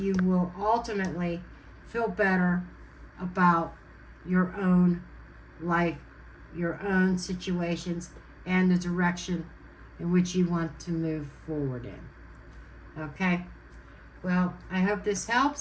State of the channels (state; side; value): identical; both; correlation 1.00